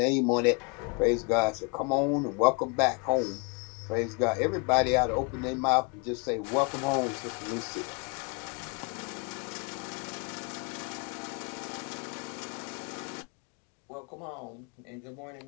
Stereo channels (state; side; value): quieter; right; 33.9 dB